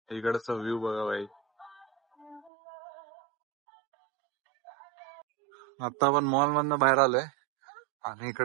इकडचा व्ह्यू बघा भाई. आता आपण मॉल मधनं बाहेर आलोय आणि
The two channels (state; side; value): drops out; left; at 2.5 s